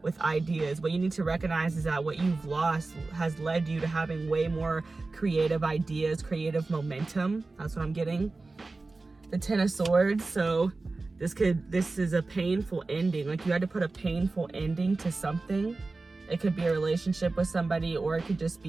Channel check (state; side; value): quieter; left; 3.5 dB